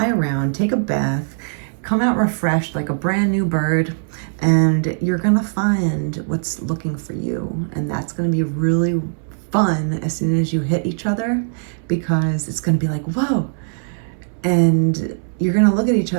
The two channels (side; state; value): left; silent; 66 dB below the other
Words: around, take a bath, come out refreshed like a brand new bird, and you're going to find what's looking for you. And that's going to be really fun as soon as you hit each other, because it's going to be like, whoa. And you're going to look at each